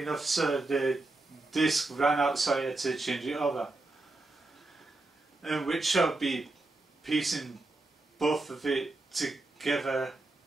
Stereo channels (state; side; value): quieter; left; 3.0 dB